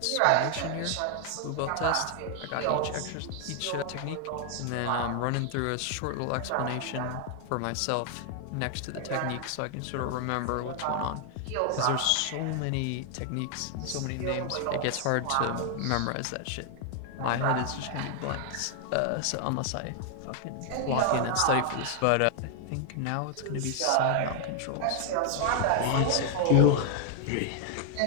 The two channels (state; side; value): different; both; correlation 0.00